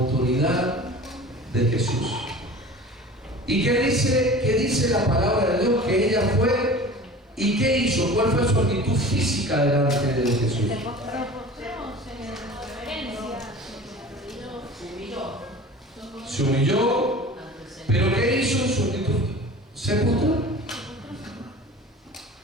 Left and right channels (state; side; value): normal; both; correlation 0.39